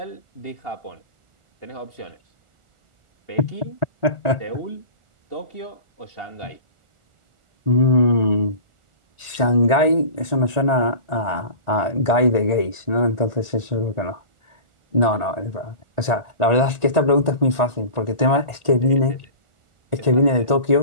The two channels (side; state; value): left; late; 1.4 ms